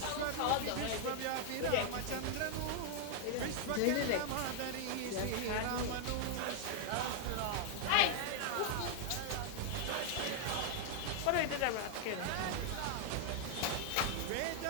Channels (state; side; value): different; both; correlation 0.00